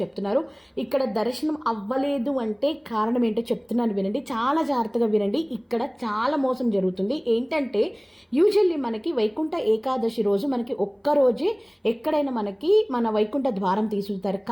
చెప్తున్నారు. ఇక్కడ దర్శనం అవ్వలేదు అంటే కారణం ఏంటో చెప్తున్నాను వినండి, చాలా జాగ్రత్తగా వినండి. ఇక్కడ చాలా మోసం జరుగుతుంది. ఏంటంటే యూజువల్లీ మనకి వైకుంఠ ఏకాదశి రోజు మనకి ఒక్కరోజే ఎక్కడైనా మనకి మన వైకుంఠ ద్వారం తీసుకుంటారు.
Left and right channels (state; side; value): identical; both; correlation 1.00